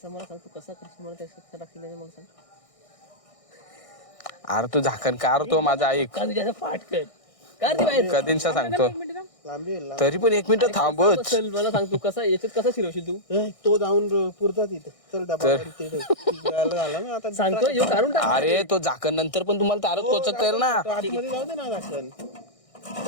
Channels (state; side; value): late; right; 1.6 ms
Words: मला सांग, तू कसा करशील मला त्याचं टाकली नाही मग सांग. अरे तू झाकण कार तो माझा ऐक का तुझ्या पाठ कर कार ती बाहेर कधींचा सांगतो लांबी होईल, तरी पण 1 मिनिट थांबच. चल मला सांग तू कसा याच्यात कसा शिरवशील तू तो जाऊन पुरता तिथे चल डबा झाला ना आता सांगतो येऊ काढून टाक. अरे तो झाकण नंतर पण तुम्हाला तारच कोचकता येईल ना. तो आतमध्ये जाऊ दे ना झाकण